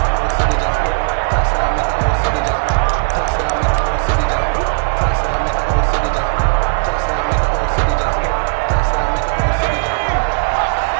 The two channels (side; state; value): left; silent; digital silence